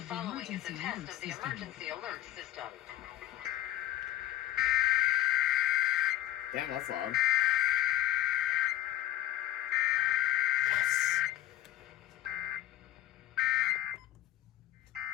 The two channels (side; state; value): right; quieter; 13.9 dB